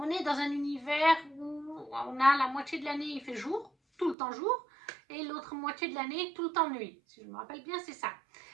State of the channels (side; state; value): left; drops out; at 4.2 s